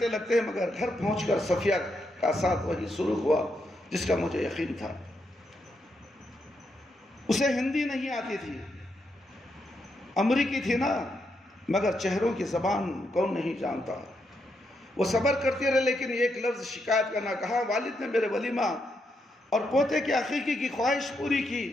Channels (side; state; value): both; normal; correlation 0.81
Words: لگتے ہیں، مگر گھر پہنچ کر صفیہ کا ساتھ وہی سلوک ہوا جس کا مجھے یقین تھا۔ اسے ہندی نہیں آتی تھی، امریکی تھی نا، مگر چہروں کی زبان کون نہیں جانتا۔ وہ صبر کرتی رہے، لیکن ایک لفظ شکایت کا نہ کہا۔ والد نے میرے ولیمہ اور پوتے کی عقیقے کی خواہش پوری